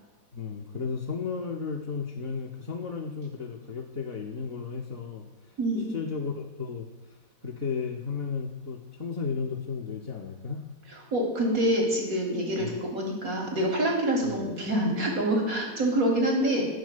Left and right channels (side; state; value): left; late; 4.2 ms